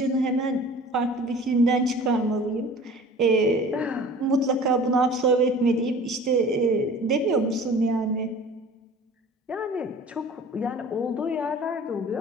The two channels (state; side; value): normal; both; correlation 0.44